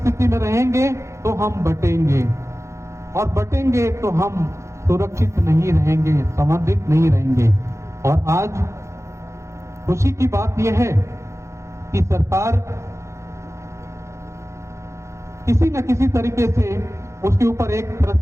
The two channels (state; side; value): late; left; 0.14 ms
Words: में रहेंगे तो हम बटेंगे, और बटेंगे तो हम सुरक्षित नहीं रहेंगे, संवर्धित नहीं रहेंगे। और आज खुशी की बात यह है कि सरकार किसी न किसी तरीके से उसके ऊपर एक तरह